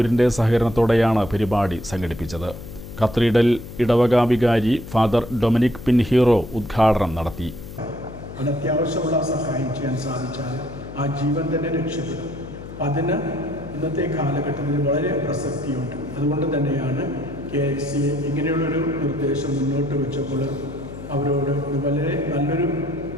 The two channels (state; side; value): noise; left; hum, 13 dB below the sound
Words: സഹകരണത്തോടെയാണ് പരിപാടി സംഘടിപ്പിച്ചത്. കത്തീഡ്രൽ ഇടവക വികാരി ഫാദർ ഡൊമിനിക് പിൻഹീറോ ഉദ്ഘാടനം നടത്തി. അത്യാവശ്യമുള്ള സഹായം ചെയ്യാൻ സാധിച്ചാൽ ആ ജീവൻ തന്നെ രക്ഷപ്പെടും. അതിന് ഇന്നത്തെ കാലഘട്ടത്തിൽ വളരെ പ്രസക്തിയുണ്ട്. അതുകൊണ്ട് തന്നെയാണ് KLCA ഇങ്ങനെയുള്ളൊരു നിർദ്ദേശം മുന്നോട്ട് വെച്ചപ്പോൾ അവരോട് ഇത് വളരെ നല്ലൊരു